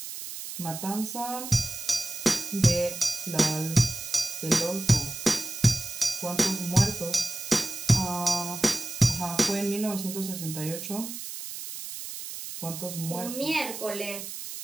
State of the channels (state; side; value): noise; right; hiss, 9 dB below the sound